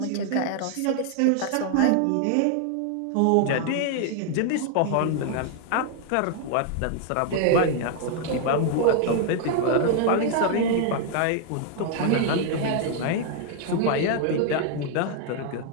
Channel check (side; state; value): both; different; correlation 0.00